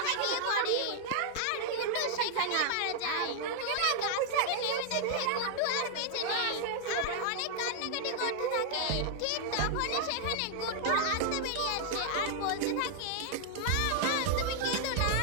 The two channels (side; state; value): both; different; correlation 0.00